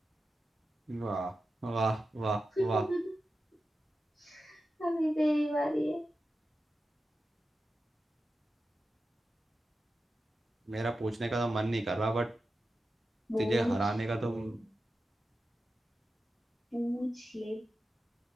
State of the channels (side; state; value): both; normal; correlation 0.92